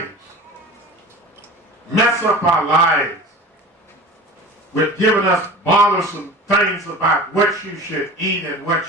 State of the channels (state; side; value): normal; both; correlation 0.36